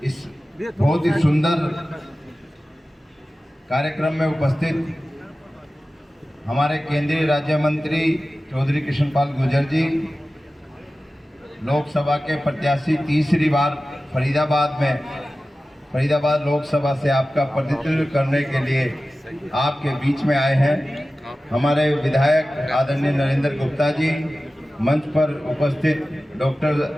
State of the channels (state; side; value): normal; both; correlation 0.95